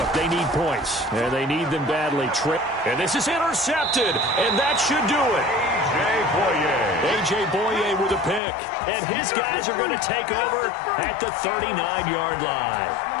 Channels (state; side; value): drops out; right; at 8.4 s